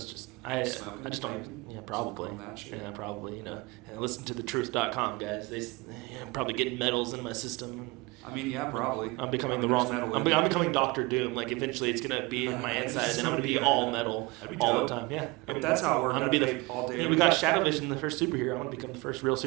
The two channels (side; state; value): left; quieter; 23.8 dB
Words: just I just don't. Yeah, probably. Yeah, probably. And listen to thetruth.com, guys. I'm probably getting metals in my system. I mean, yeah, probably. I'm becoming the wrong. I'm becoming Doctor Doom. Like eventually, it's gonna be in my inside, and then I'm gonna be all metal all the time. Yeah, if that's how it works. I'm gonna be all day. We got Shadow Vision, the first superhero. I'm gonna become the first real